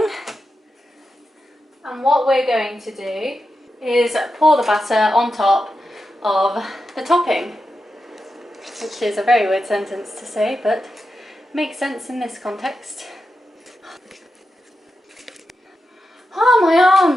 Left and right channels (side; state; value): both; normal; correlation 0.89